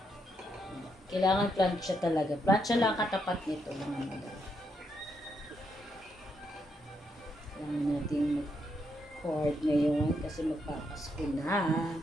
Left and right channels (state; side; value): normal; both; correlation 0.78